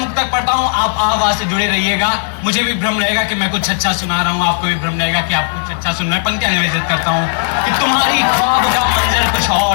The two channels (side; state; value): right; silent; digital silence